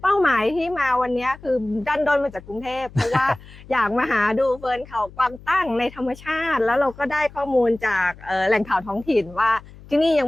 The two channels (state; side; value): noise; left; hum, 20 dB below the sound